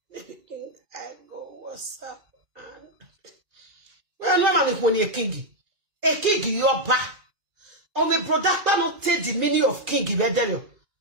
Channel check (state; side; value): late; left; 2.5 ms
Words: I go what's up well no man when you king your back. Oh, my brother, not take the meaning of king in Bedelio.